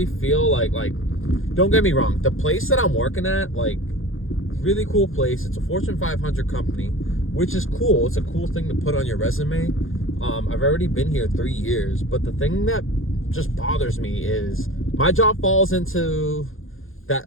feel like don't get me wrong, the place that I'm working at, like, really cool place. It's a Fortune 500 company, which is cool. It's a cool thing to put on your resume. I've already been here 3 years, but the thing that just bothers me is my job falls into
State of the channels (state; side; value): late; right; 0.60 ms